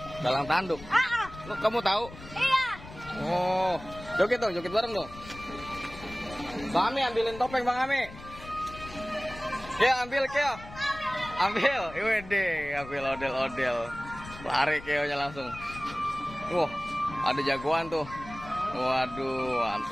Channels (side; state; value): left; noise; rumble, 16 dB below the sound